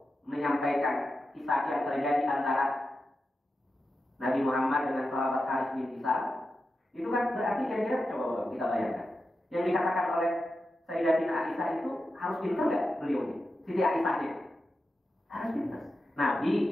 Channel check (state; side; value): normal; both; correlation 0.90